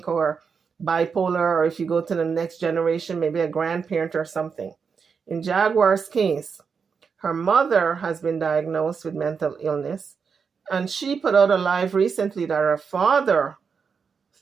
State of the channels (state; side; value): quieter; left; 5.9 dB